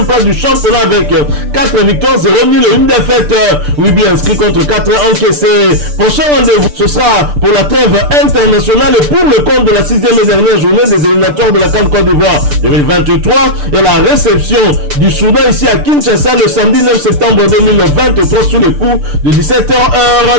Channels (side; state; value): left; late; 6.8 ms